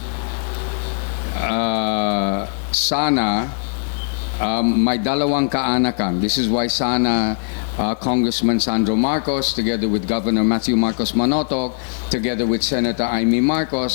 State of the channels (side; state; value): right; silent; digital silence